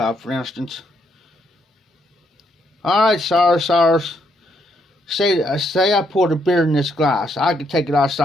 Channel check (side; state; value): both; normal; correlation 0.75